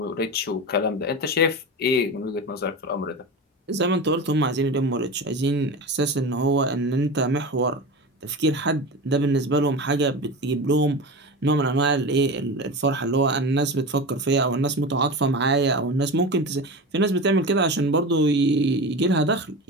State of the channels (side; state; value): both; normal; correlation 0.27